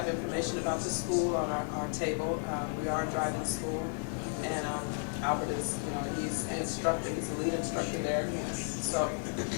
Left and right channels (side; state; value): right; silent; 56 dB below the other